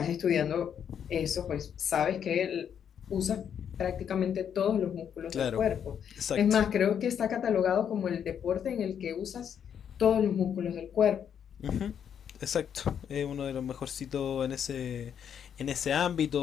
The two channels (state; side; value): quieter; right; 8.4 dB